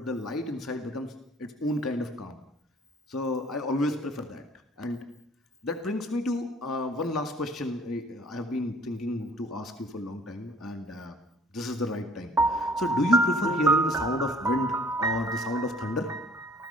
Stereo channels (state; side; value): normal; both; correlation 0.54